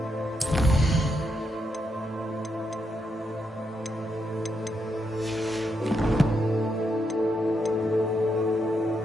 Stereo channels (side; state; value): both; normal; correlation 0.81